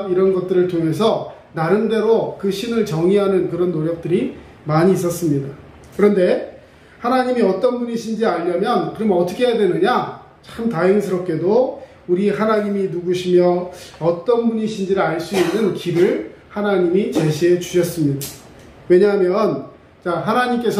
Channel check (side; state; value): both; identical; correlation 1.00